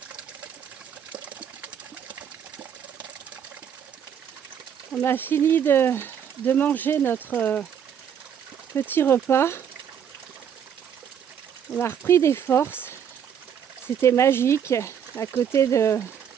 On a fini de manger notre petit repas. On a repris des forces. C'était magique à côté de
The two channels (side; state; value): left; quieter; 8.4 dB